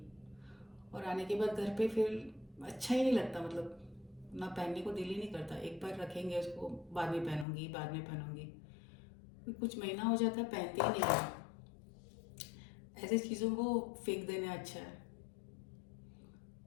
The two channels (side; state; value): right; drops out; at 7.5 s